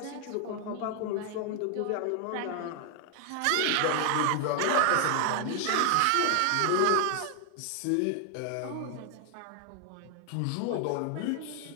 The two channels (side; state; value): both; different; correlation 0.00